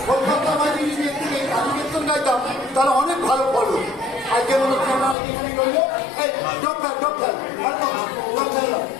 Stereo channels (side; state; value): right; drops out; at 5.2 s